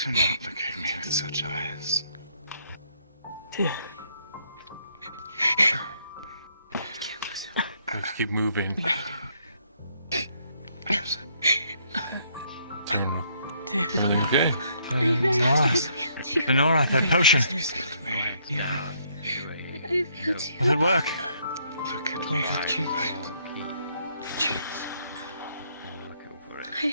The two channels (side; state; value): both; inverted; correlation -0.69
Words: not look at me with such eyes. Let's keep moving. Everything okay? Lenora, that potion. Will it work? Look at me. Cheeks.